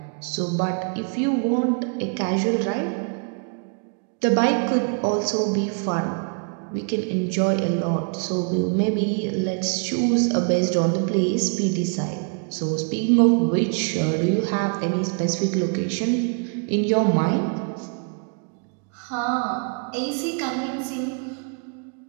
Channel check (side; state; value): left; quieter; 39.5 dB